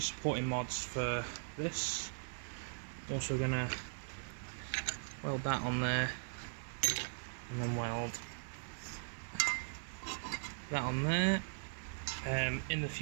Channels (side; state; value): left; silent; digital silence